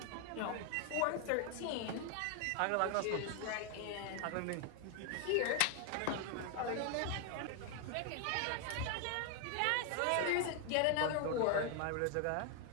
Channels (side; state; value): both; different; correlation 0.01